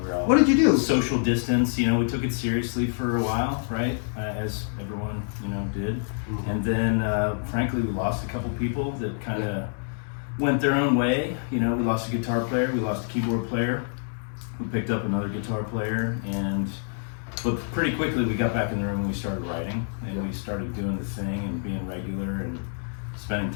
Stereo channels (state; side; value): silent; right; 60 dB below the other